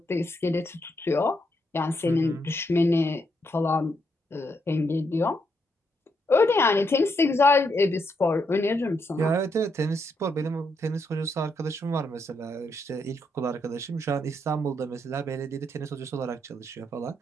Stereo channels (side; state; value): both; normal; correlation 0.78